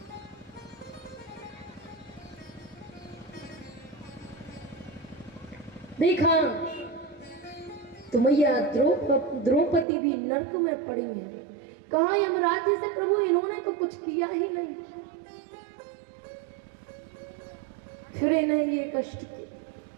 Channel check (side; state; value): left; drops out; at 9.9 s